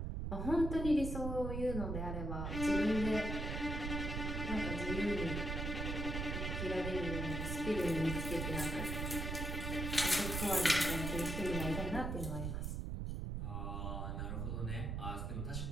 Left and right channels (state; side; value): noise; right; rumble, 2 dB below the sound